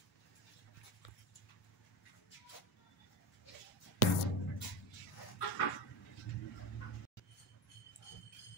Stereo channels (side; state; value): both; normal; correlation 0.19